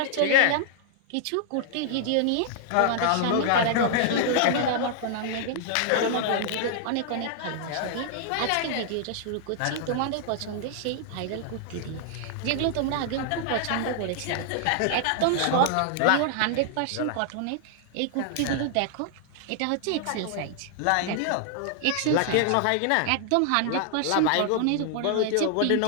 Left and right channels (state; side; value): different; both; correlation -0.01